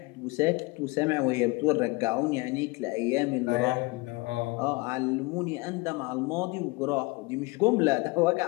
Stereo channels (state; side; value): quieter; right; 24.9 dB